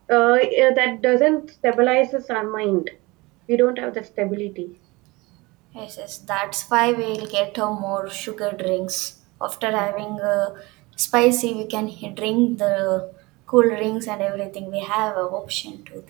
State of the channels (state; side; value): quieter; left; 23.4 dB